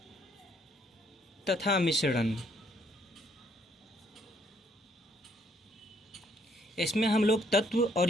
तथा मिश्रण। इसमें हम लोग तत्व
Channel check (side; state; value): both; normal; correlation 0.68